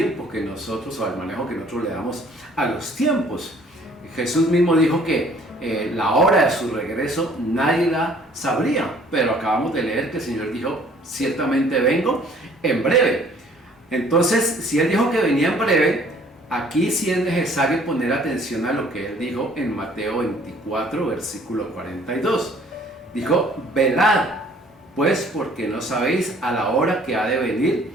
que nosotros, o al manejo que nosotros le damos a los tiempos. Jesús mismo dijo que la hora de su regreso nadie la sabría, pero acabamos de leer que el Señor dijo: ciertamente vengo en breve. Entonces, si Él dijo que venía en breve, aquí sí es necesario poner atención a lo que Él dijo en Mateo 24, versículo 42. Dijo: velad, pues, porque no sabéis a la hora que ha de venir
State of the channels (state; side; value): normal; both; correlation 0.57